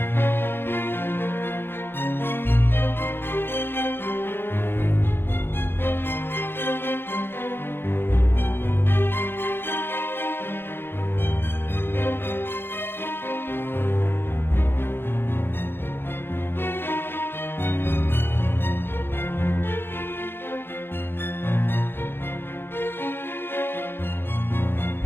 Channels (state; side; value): late; right; 0.10 ms